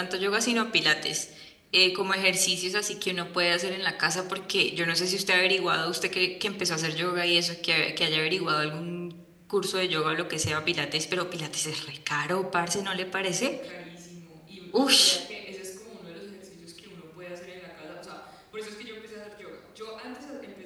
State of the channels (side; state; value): both; identical; correlation 1.00